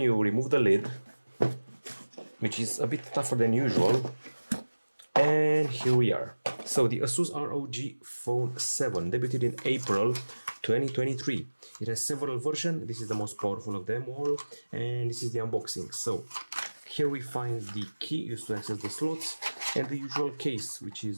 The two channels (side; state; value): both; inverted; correlation -1.00